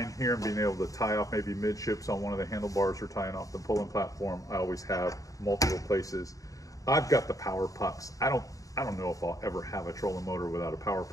here and being able to tie off maybe midships on one of the handlebars or tying off the pulling platform, I always have multiple places. I've got the power pucks. I don't know if I'll ever have a trolling motor without a power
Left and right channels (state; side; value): late; right; 0.16 ms